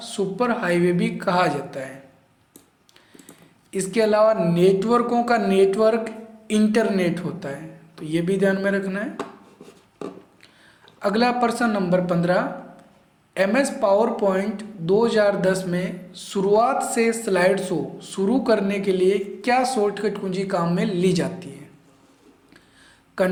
सुपर हाईवे भी कहा जाता है। इसके अलावा नेटवर्कों का नेटवर्क इंटरनेट होता है, तो ये भी ध्यान में रखना है। अगला प्रश्न नंबर 15, MS पावर पॉइंट 2010 में शुरुआत से स्लाइड शो शुरू करने के लिए क्या शॉर्टकट कुंजी काम में ली जाती है?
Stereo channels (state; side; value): identical; both; correlation 1.00